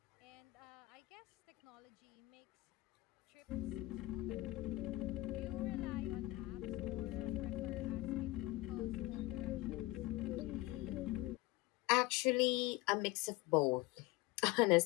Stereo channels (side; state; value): right; quieter; 19.7 dB